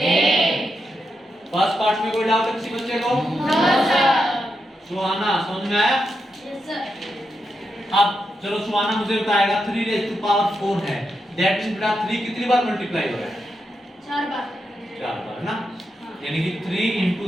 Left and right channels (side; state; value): both; normal; correlation 0.85